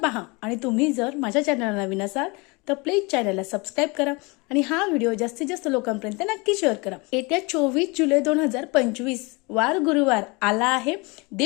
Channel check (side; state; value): right; quieter; 27.4 dB